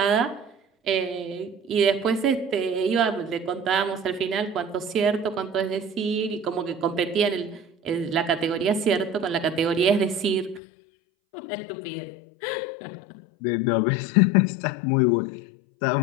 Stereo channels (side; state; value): right; drops out; at 10.6 s